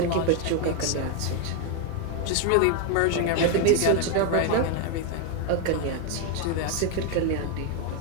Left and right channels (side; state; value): both; different; correlation 0.01